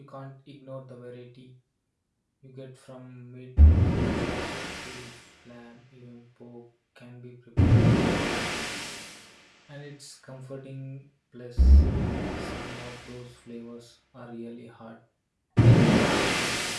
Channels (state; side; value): identical; both; correlation 1.00